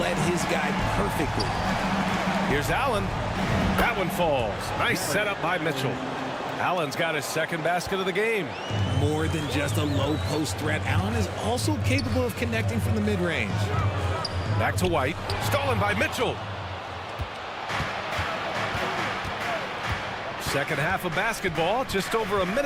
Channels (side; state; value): both; identical; correlation 1.00